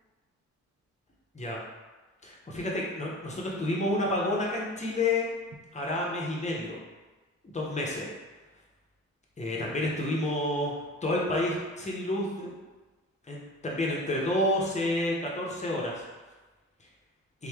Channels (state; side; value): normal; both; correlation 0.37